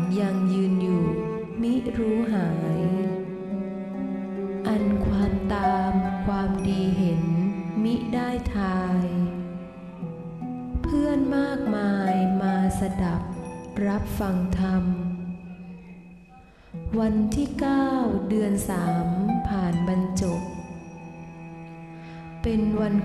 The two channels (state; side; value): identical; both; correlation 1.00